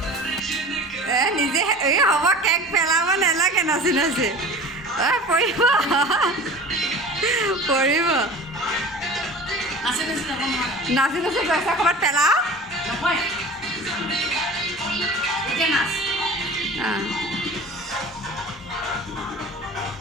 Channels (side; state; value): both; normal; correlation 0.39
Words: নিজে এই হ'ব কেক পেলাব নালাগে নাচি পৰিব নাচি পইচা ক'ৰবাত পেলাও